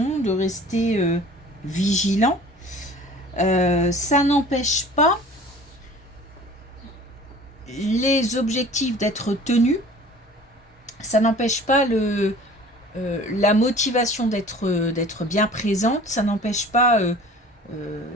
de rester vigilant. Ça n'empêche pas les objectifs d'être tenus. Ça n'empêche pas la motivation d'être bien présente. Ça n'empêche pas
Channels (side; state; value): both; normal; correlation 0.45